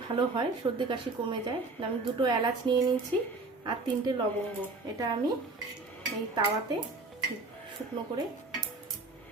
ভালো হয়, সর্দি কাশি কমে যায়। আমি 2টো এলাচ নিয়ে নিয়েছি আর 3টে লবঙ্গ, এটা আমি এই তাওয়াতে শুকনো করে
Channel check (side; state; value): left; quieter; 3.5 dB